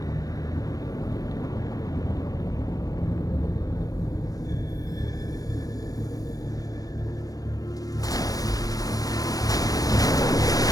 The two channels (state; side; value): late; right; 0.18 ms